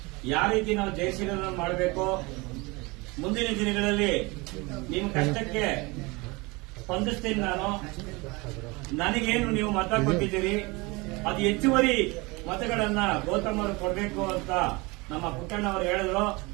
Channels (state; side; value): quieter; left; 25.3 dB